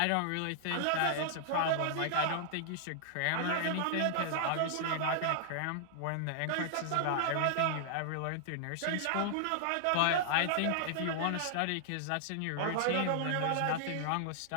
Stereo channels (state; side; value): different; both; correlation -0.01